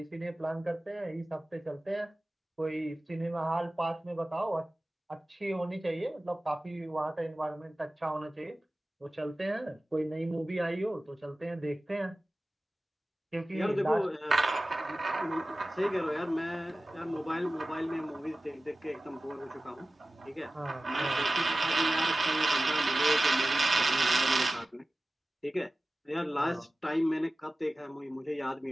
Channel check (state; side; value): normal; both; correlation 0.96